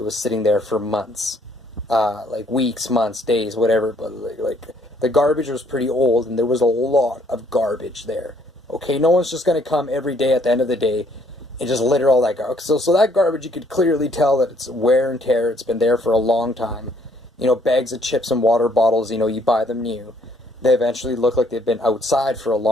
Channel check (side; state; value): both; normal; correlation 0.65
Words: was sitting there for months. Like weeks, months, days, whatever, but the garbage was pretty old, and there was a lot of garbage there. Okay, no one's just going to come every day at the end of the day and just litter all that garbage. So that garbage, you could clearly tell that it's wear and tear. It's been there for a long time. Bags of chips and water bottles, you buy them new. they eventually look like they've been outside for a